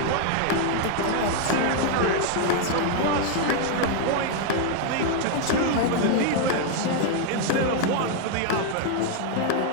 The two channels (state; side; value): different; both; correlation 0.00